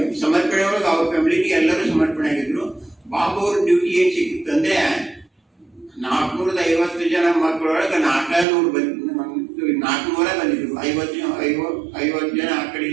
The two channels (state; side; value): drops out; left; at 8.5 s